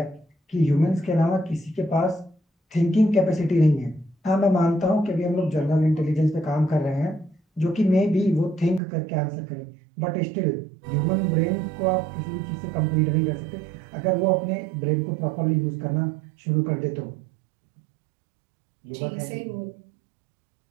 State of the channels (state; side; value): drops out; left; at 8.8 s